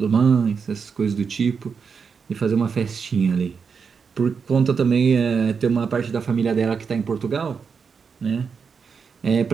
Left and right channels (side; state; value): left; quieter; 5.9 dB